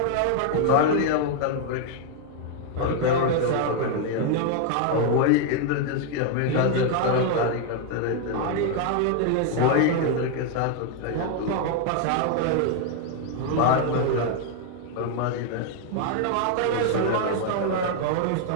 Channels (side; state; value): both; different; correlation 0.00